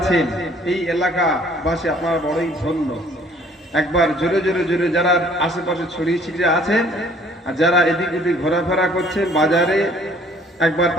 এই এলাকাবাসী আপনারা বড়ই ধন্য। একবার জোরে জোরে জোরে যারা আশেপাশে ছড়িয়ে ছিটিয়ে আছেন আর যারা এদিক ওদিক ঘোরাফেরা করছেন বাজারে, একবার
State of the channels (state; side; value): normal; both; correlation 0.58